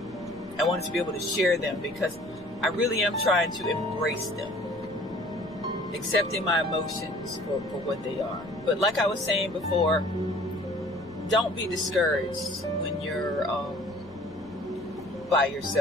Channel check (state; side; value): noise; left; rumble, 23 dB below the sound